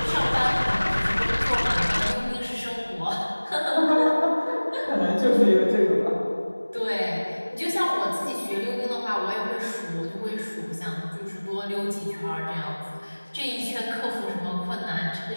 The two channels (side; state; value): both; inverted; correlation -1.00